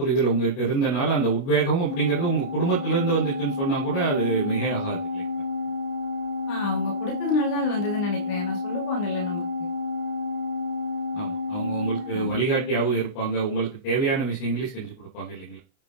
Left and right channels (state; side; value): late; right; 29 ms